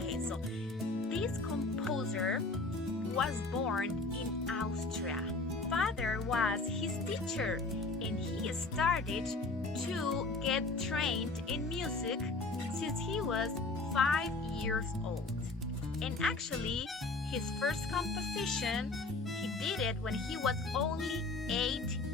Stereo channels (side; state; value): right; quieter; 3.4 dB